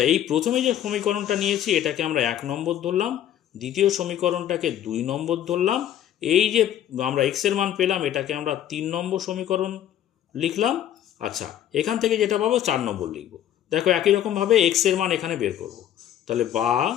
এই প্রথমে যে সমীকরণটা নিয়েছি এটাকে আমরা 1 নম্বর ধরলাম, দ্বিতীয় সমীকরণটাকে 2 নম্বর ধরলাম, এই যে আমরা x এর মান পেলাম এটাকে আমরা 3 নম্বর সমীকরণ লিখলাম। আচ্ছা এখান থেকে যেটা পাবো 4 নম্বর লিখব, দেখো একই রকমভাবে x এর মান এখানে বের করব, তাহলে বা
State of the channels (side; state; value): right; quieter; 11.1 dB